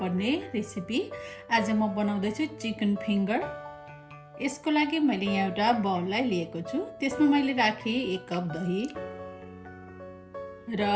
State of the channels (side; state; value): both; identical; correlation 1.00